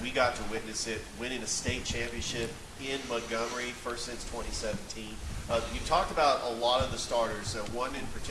We got to witness it, winning a state championship in Montgomery, first since 2017. You talked about a lot of the starters. One in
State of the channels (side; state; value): both; identical; correlation 1.00